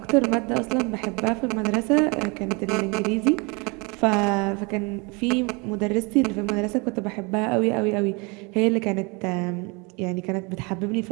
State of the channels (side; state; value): left; quieter; 29.4 dB